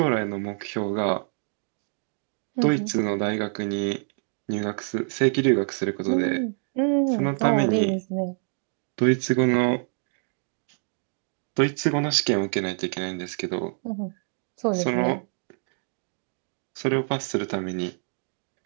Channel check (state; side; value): silent; left; 56 dB below the other